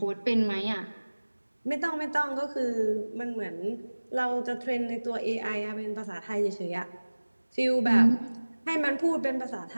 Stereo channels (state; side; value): inverted; both; correlation -1.00